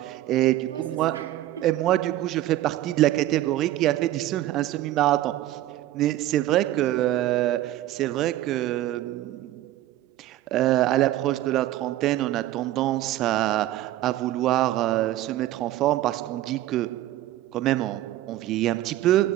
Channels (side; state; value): left; quieter; 14.7 dB